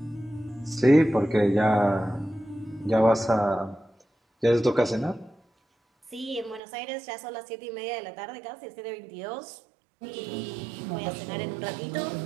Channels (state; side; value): drops out; left; at 6.6 s